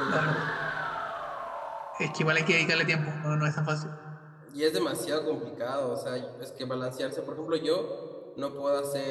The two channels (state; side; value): identical; both; correlation 1.00